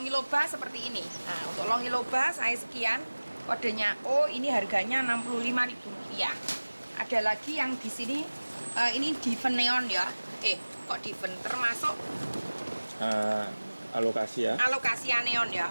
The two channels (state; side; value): inverted; both; correlation -1.00